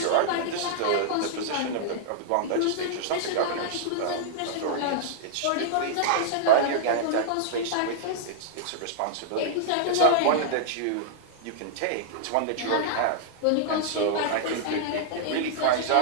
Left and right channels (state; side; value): different; both; correlation -0.01